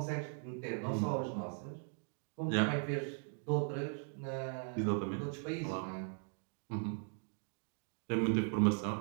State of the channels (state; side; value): silent; left; 52 dB below the other